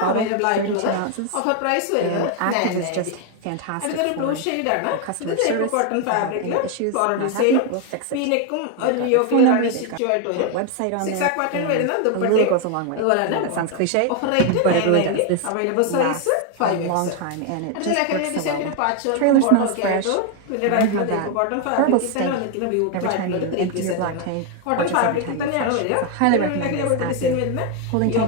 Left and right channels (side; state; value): both; different; correlation 0.01